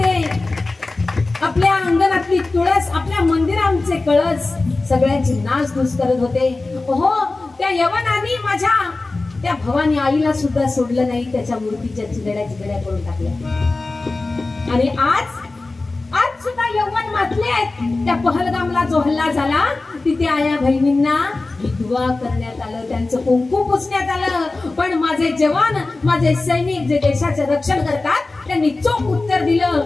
आपल्या अंगणातली तुळस आपल्या मंदिरांचे कळस सगळ्यांची नाचधूस करत होते हो त्या यवनाने माझ्या त्या भवानी आईला सुद्धा सोडलं नाही त्याच्या मूर्तीच्या चिगड्या करून टाकल्या आणि आज सुद्धा यौवन मातले आहेत त्या पहलगामला जो हल्ला झाला तिथे आया बहिणींना विधवा करण्यात आलं त्यांचं कुंकू पुसण्यात आलं पण माझे जवान माझे सैनिक जे देशाचे रक्षण करतात त्यांनी चोख उत्तर दिलं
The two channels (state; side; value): quieter; right; 3.3 dB